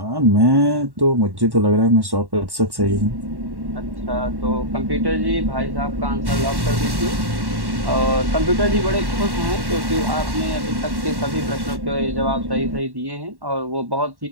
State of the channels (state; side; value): late; left; 1.1 ms